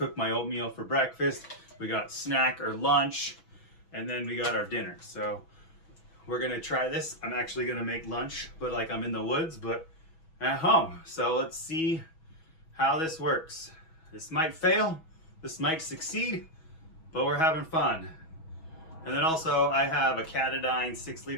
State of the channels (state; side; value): late; right; 6.2 ms